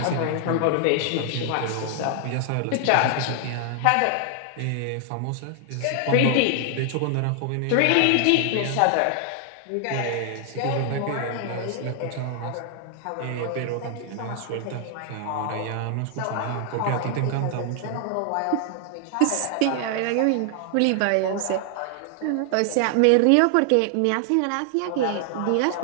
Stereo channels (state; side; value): different; both; correlation 0.00